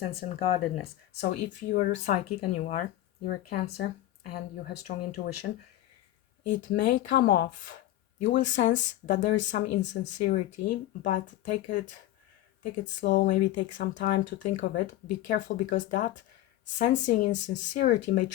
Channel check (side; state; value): right; quieter; 14.6 dB